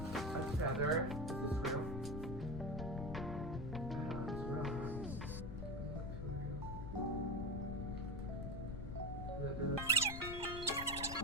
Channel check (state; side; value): noise; left; rumble, 5 dB below the sound